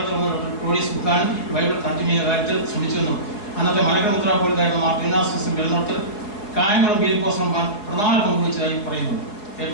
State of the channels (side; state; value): right; late; 4.8 ms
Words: വന്ന ഡോക്ടർ ക്ലോഡിയസ് ബുക്കാൻ ബൈബിൾ തർജ്ജമ ചെയ്യുന്ന കാര്യത്തിൽ ശ്രമിച്ചുവെന്നും അന്നത്തെ മലകമുദ്ര പോലീസായിരുന്ന മാർട്ടിനാസിസും വെള്ളനോട്ടത്തിൽ കായംകുളം ഫിലിപ്പോസ് റഹ്മാൻ പ്രധാന പങ്കുവച്ചതായി പറയുന്നു.